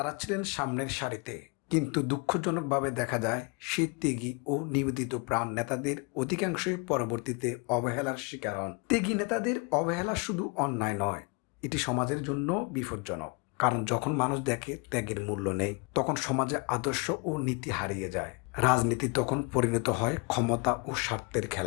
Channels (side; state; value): right; quieter; 31.2 dB